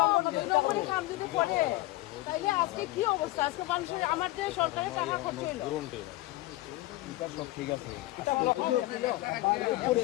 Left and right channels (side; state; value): right; quieter; 18.9 dB